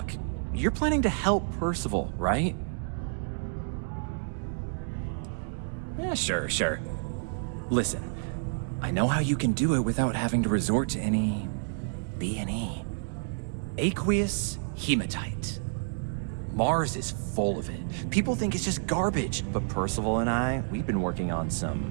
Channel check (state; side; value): silent; left; digital silence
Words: you're planning to help Percival, right? Yeah, sure. Listen, I know how you can do it without having to resort to any B&E. Aqueous hematite. Mars is full of it. People think it's just garbage, but Percival and I, we've been working on